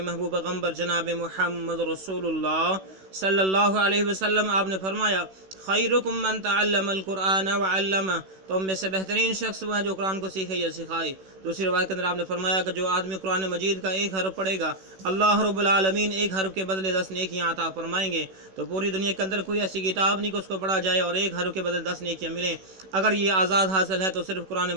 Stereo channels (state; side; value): late; left; 16 ms